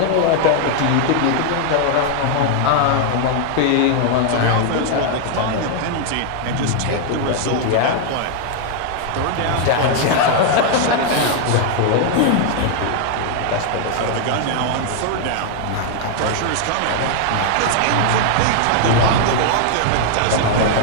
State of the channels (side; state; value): both; different; correlation 0.00